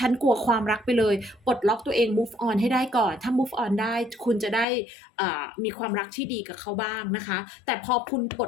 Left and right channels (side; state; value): right; drops out; at 4.7 s